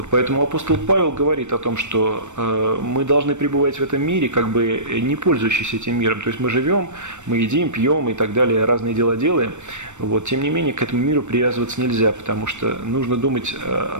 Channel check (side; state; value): left; late; 0.84 ms